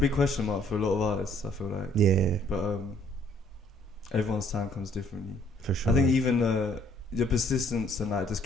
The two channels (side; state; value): both; normal; correlation 0.62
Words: question mark for a lot of artists, I feel like. Yeah. But everyone's time comes differently. For sure. I think even your persistence and like just